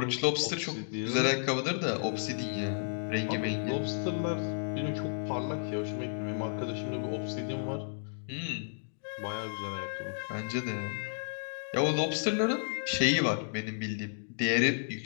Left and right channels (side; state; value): right; silent; digital silence